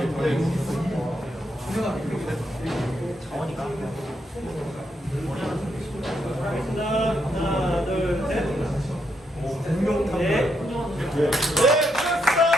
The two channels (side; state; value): both; normal; correlation 0.79